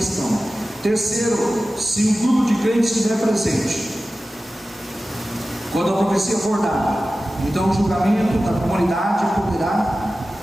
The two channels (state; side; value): normal; both; correlation 0.95